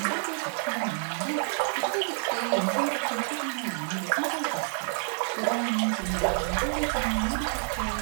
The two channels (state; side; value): silent; left; digital silence